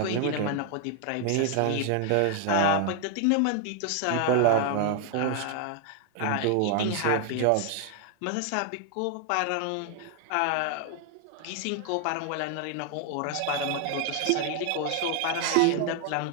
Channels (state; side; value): different; both; correlation 0.00